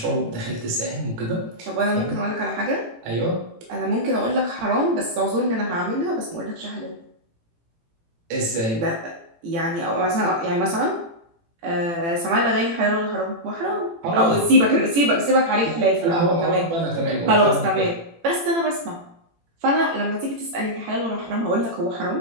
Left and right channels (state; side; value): late; left; 18 ms